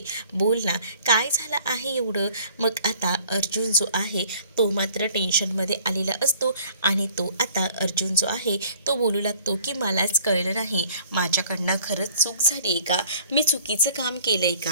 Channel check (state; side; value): inverted; both; correlation -0.54